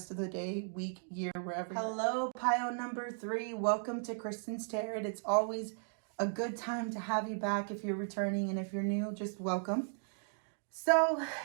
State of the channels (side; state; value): left; silent; digital silence